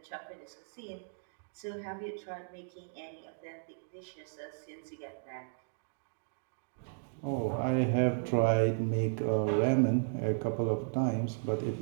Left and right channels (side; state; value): left; silent; digital silence